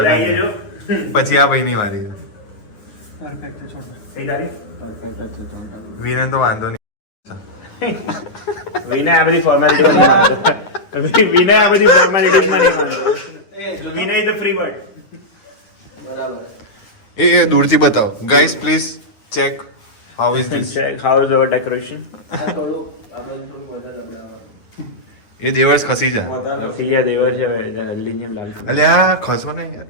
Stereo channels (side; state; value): right; late; 9.7 ms